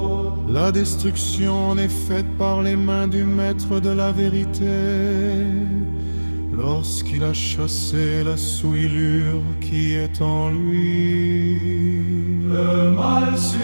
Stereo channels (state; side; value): inverted; both; correlation -1.00